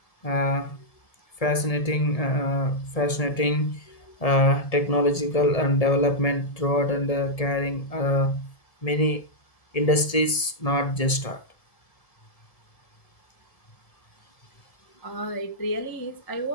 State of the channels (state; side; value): late; right; 1.7 ms